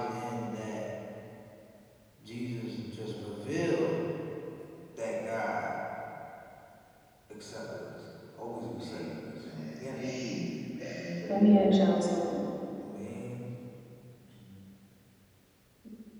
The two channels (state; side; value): identical; both; correlation 1.00